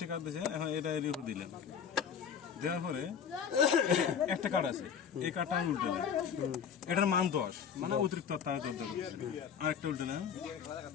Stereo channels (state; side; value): quieter; right; 7.5 dB